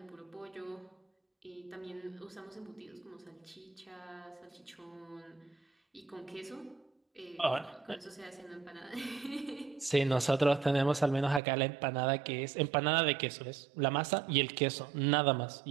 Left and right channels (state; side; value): drops out; left; at 11.4 s